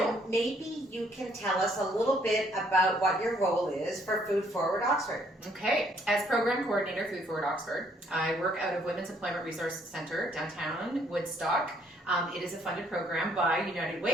maybe you can tell us a little bit about what your role is for Food Forward Oxford. Okay. As Program Coordinator, Food Forward Oxford, I work out of Women's Employment Resource Center, downtown Woodstock. It is a funded program by United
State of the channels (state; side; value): normal; both; correlation 0.66